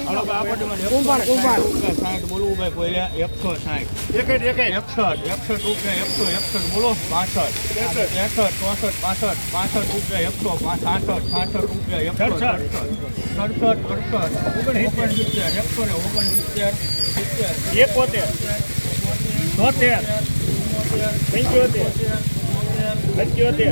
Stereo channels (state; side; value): inverted; both; correlation -1.00